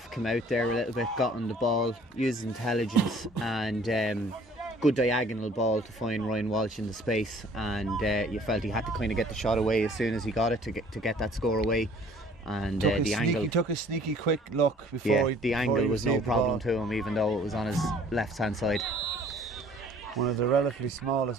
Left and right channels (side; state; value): both; normal; correlation 0.54